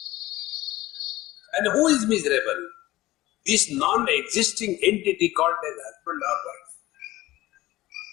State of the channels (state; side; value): quieter; right; 17.4 dB